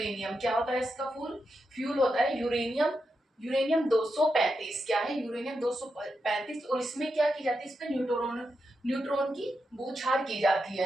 क्या होता है इसका फ्यूल होता है यूरेनियम 235। क्या है? यूरेनियम 235। और इसमें क्या की जाती है? इसमें न्यूट्रॉन की बूछार की जाती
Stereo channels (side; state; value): both; normal; correlation 0.86